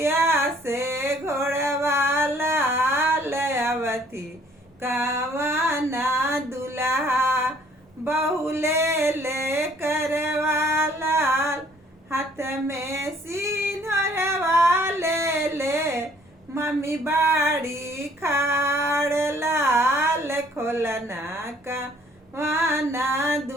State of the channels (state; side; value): normal; both; correlation 0.60